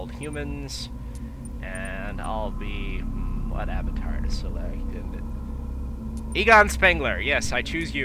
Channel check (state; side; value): identical; both; correlation 1.00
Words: humans, and I'll be... what avatar to select? Egon Spengler, yes, I choose